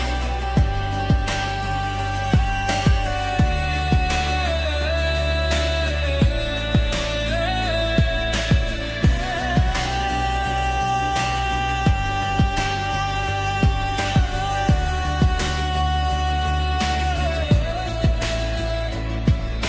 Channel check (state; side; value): identical; both; correlation 1.00